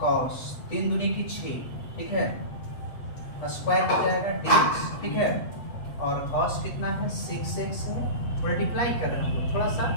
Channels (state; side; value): late; right; 8.1 ms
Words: 3 दूनी की 6, ठीक है, स्क्वायर हो जाएगा dx, ठीक है। और कॉस कितना है 6x है, मल्टीप्लाई कर रहे हैं हम लोग, थोड़ा सा